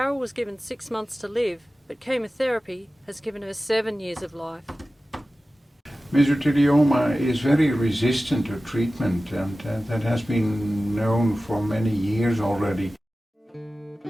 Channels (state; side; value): normal; both; correlation 0.95